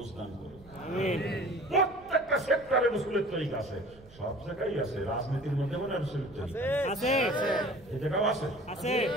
করুন। প্রত্যেকটা সেক্টরে রাসূলের তরিকা আছে, সব জায়গায় আছে। রাজনীতির মধ্যে মানে রাসূলের তরিকা আছে, এই জায়গাও আছে।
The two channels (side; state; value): right; noise; rumble, 24 dB below the sound